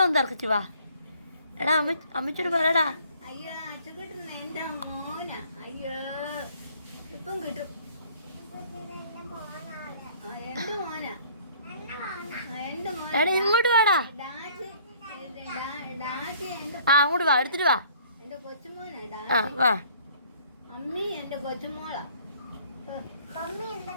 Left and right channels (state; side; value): inverted; both; correlation -0.57